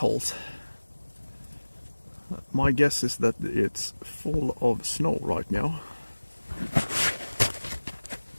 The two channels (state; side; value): inverted; both; correlation -1.00